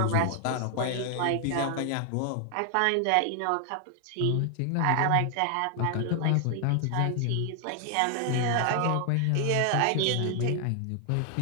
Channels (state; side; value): different; both; correlation 0.00